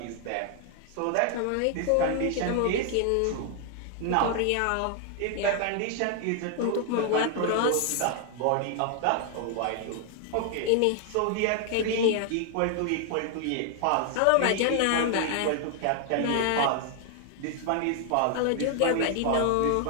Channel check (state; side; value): different; both; correlation 0.00